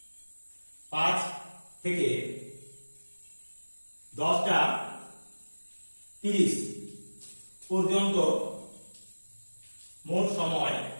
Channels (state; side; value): inverted; both; correlation -1.00